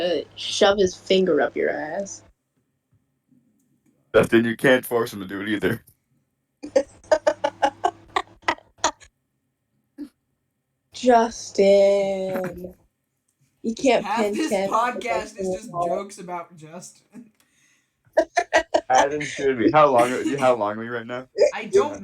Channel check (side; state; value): both; identical; correlation 1.00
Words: shove his finger up your ass. Justin, you can't force him to do it either. Justin, you can't Half pin this Kent. podcast is just jokes about Justin. As it should be. How long are we right now? I don't